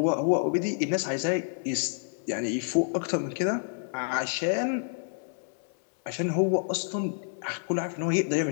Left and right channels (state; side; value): silent; right; digital silence